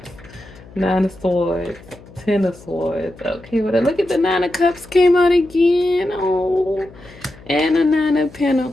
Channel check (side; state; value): left; noise; hum, 21 dB below the sound